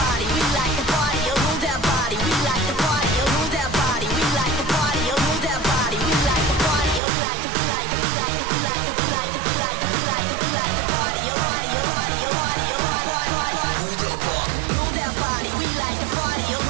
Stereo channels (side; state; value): left; drops out; at 7.0 s